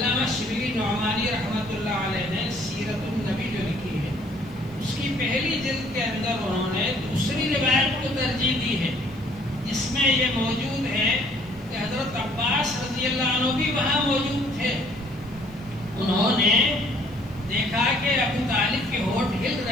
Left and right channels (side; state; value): right; noise; hiss, 30 dB below the sound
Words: شبلی نعمانی رحمۃ اللہ علیہ نے سیرت النبی جو لکھی ہے، اس کی پہلی جلد کے اندر انہوں نے دوسری روایت کو ترجیح دی ہے، جس میں یہ موجود ہے کہ حضرت عباس رضی اللہ عنہ بھی وہاں موجود تھے، انہوں نے دیکھا کہ ابو طالب کے ہونٹ ہل